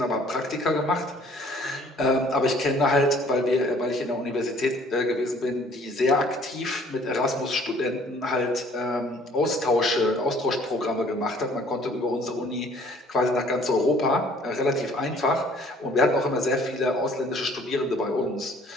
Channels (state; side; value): normal; both; correlation 0.56